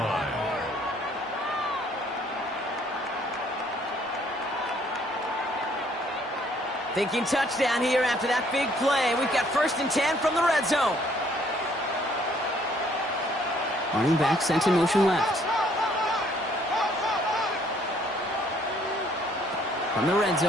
Thinking touchdown here after that big play. We've got first and 10 from the red zone. Running back sent in motion left. From the red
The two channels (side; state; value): both; normal; correlation 0.63